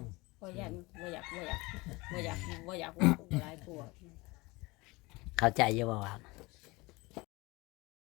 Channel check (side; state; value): right; quieter; 23.4 dB